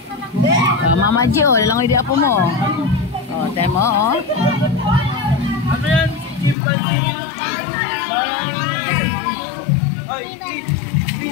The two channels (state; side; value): drops out; right; at 6.6 s